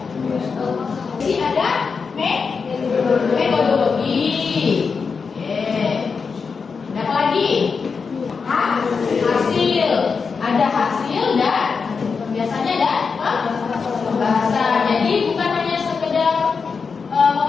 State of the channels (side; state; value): right; quieter; 5.3 dB